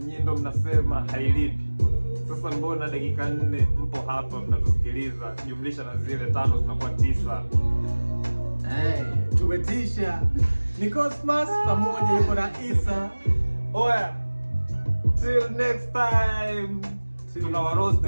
ndo mnasema hailipi? Sasa mbona dakika 4 mpo hapa mnatusikiliza, jumlisha na zile 5 zinakuwa 9. Tumetisha. Ni Cosmas pamoja yuko na Isa. Oya, till next time. Tunawaroast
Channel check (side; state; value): both; inverted; correlation -1.00